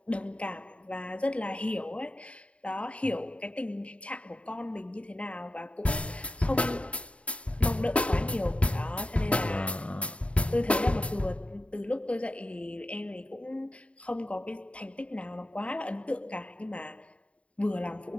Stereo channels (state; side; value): late; right; 0.062 ms